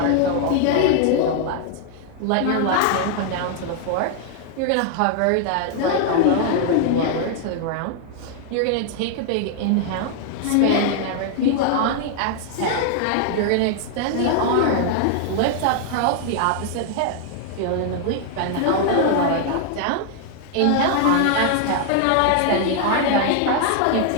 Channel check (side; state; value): both; different; correlation 0.00